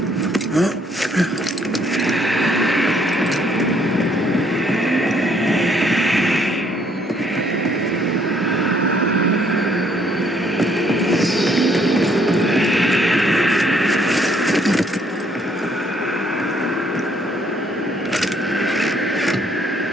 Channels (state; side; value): normal; both; correlation 0.66